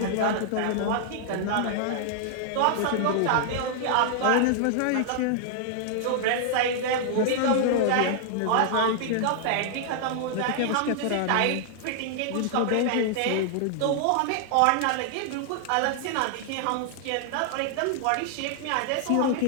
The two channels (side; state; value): both; different; correlation -0.01